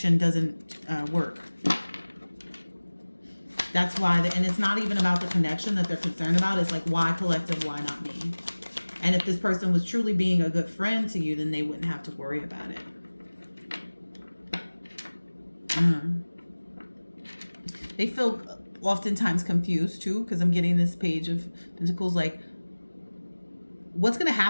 doesn't work. That's why, and it's not even about the connection that they're concerned about. It's like, why collective, why not me? And if this person was truly being a good friend to you, then they wouldn't have to worry about it. They feel oftentimes confused too, because I'm getting this Page of Pentacles. Like, what's going to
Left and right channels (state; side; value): inverted; both; correlation -1.00